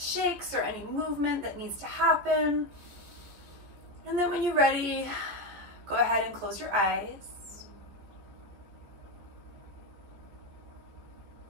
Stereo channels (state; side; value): late; left; 14 ms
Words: or any movement that needs to happen. And then when you're ready, go ahead and close your eyes.